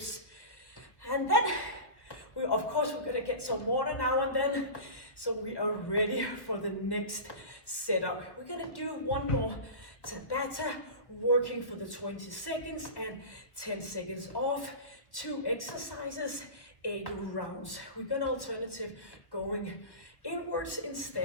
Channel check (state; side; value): late; right; 1.3 ms